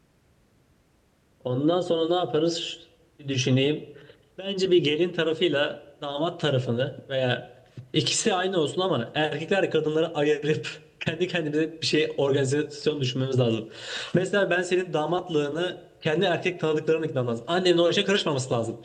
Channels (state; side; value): identical; both; correlation 1.00